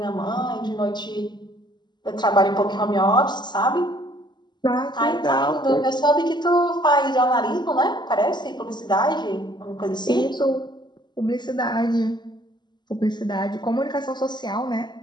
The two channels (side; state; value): right; late; 0.21 ms